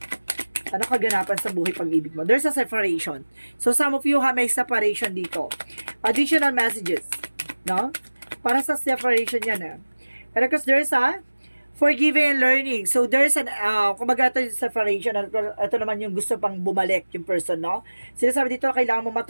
Ano kaganapan sa buhay pag-ibig mo? There's a separation. So some of you may separation dito. Additional messages, no? Para sa separation yan, Pero because there's a forgiving and learning. So, there's an, kumbaga ito yung separation. Ito naman yung gusto pang bumalik yung person, no? Sinasabi dito, kailangan mo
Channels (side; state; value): both; inverted; correlation -1.00